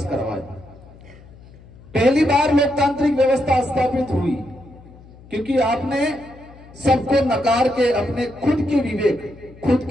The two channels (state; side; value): noise; left; hum, 22 dB below the sound